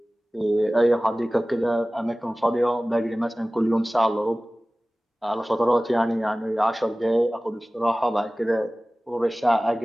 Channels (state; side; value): normal; both; correlation 0.98